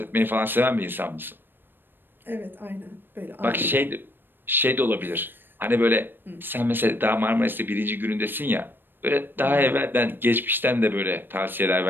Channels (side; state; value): left; late; 0.096 ms